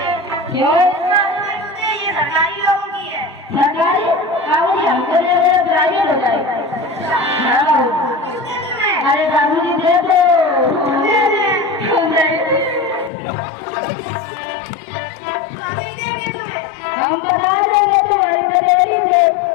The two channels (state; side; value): drops out; right; at 13.1 s